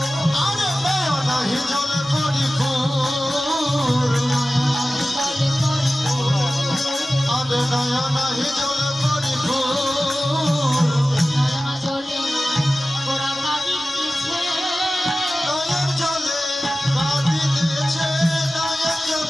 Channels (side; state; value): both; normal; correlation 0.95